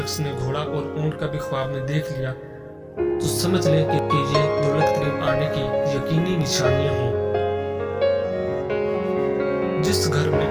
نے گھوڑا اور اونٹ کا بھی خواب میں دیکھ لیا تو سمجھ لے کہ یہ دولت قریب آنے کی یقینی نشانیاں ہیں۔ جس گھر میں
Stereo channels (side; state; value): both; identical; correlation 1.00